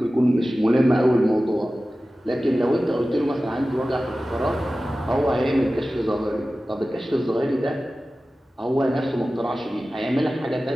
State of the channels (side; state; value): both; normal; correlation 0.95